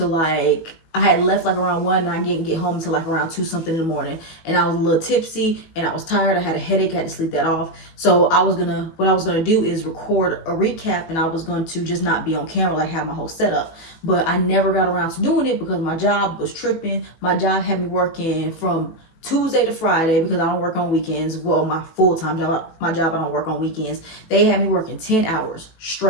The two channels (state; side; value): late; right; 18 ms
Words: I had left around 1 and I didn't get home until around 2 something in the morning. And I was a little tipsy and I was tired. I had a headache. I had to sleep that off. So what I was gonna do is record a recap, and I was going to just not be on camera, have my whole setup. But I never got around to doing it because my job was tripping. My job had me working from Tuesday to Friday because I don't work on weekends. Well, my full-time job, I don't work on weekends. They had me working 10 hours